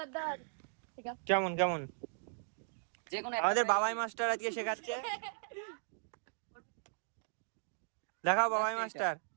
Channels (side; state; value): left; silent; digital silence